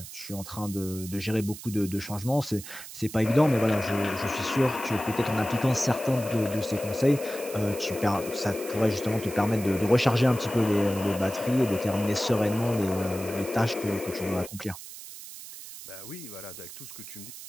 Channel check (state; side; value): noise; right; hiss, 13 dB below the sound